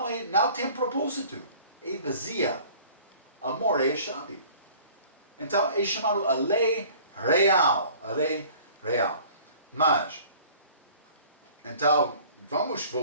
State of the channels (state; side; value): inverted; both; correlation -0.49